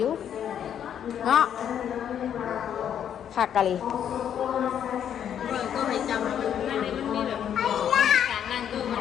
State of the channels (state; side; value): quieter; right; 9.2 dB